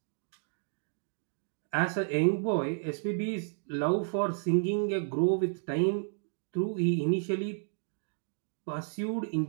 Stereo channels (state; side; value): silent; left; digital silence